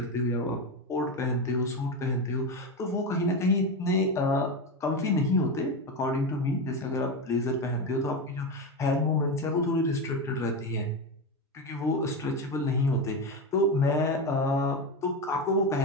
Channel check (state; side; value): normal; both; correlation 0.16